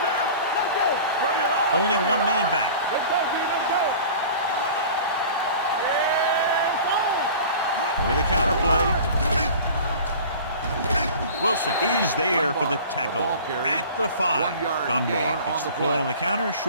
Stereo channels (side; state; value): both; inverted; correlation -0.41